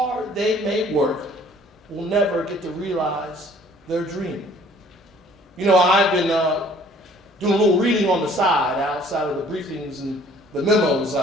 they may work, will never get to realize their dream. You know, I've been doing a little reading on the side, outside of the briefings and the memos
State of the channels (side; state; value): both; normal; correlation 0.56